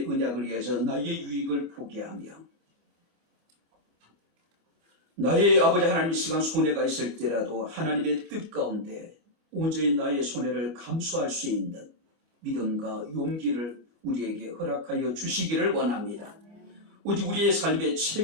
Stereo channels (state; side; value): late; left; 29 ms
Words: 언약을 위해서 나의 유익을 포기하며 나의 아버지 하나님 이 시간 손해가 있을 때라도 하나님의 뜻 가운데 온전히 나의 손해를 감수할 수 있는 믿음과 용기를 우리에게 허락하여 주시기를 원합니다. 오직 우리의 삶의